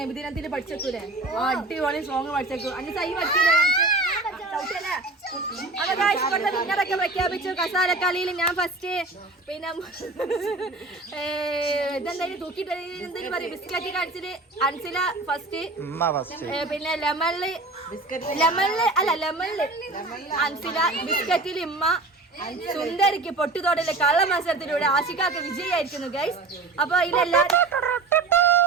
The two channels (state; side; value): quieter; left; 3.3 dB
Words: നബിദിനത്തിൽ പഠിച്ചേക്കൂലേ? അടിപൊളി സോങ് പഠിച്ചേക്കൂ. അന്ന് സൈ പഠിച്ചില്ലേ? വിന്നറൊക്കെ പ്രഖ്യാപിച്ചു. കസാലക്കളിയിൽ ഞാൻ ഫസ്റ്റ്. പിന്നെ ഇതെന്തായാലും തൂക്കിട്ട് എന്തെങ്കിലും പറയും. ബിസ്ക്കറ്റ് കാണിച്ചിട്ട് അൻസില ഫസ്റ്റ്. പിന്നെ ലെമണില് അൻസില, ബിസ്ക്കറ്റിൽ ഇമ്മ, സുന്ദരിക്ക് പൊട്ടുതോടലെ കള്ള മത്സരത്തിലൂടെ ആഷിക്കാക്ക് വിജയായിരിക്കുന്നു ഗൈസ്. അപ്പൊ ഇതിലെല്ലാരും